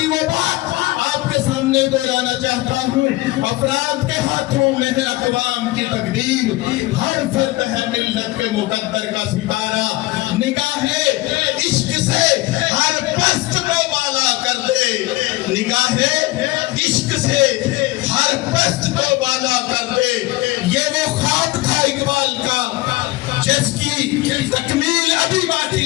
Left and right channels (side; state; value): right; quieter; 20.1 dB